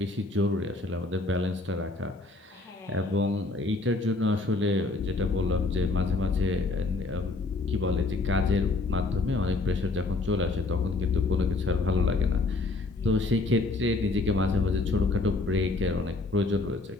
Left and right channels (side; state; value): right; quieter; 3.3 dB